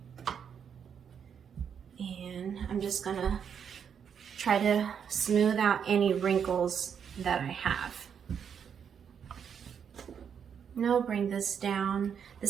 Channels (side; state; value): left; quieter; 7.6 dB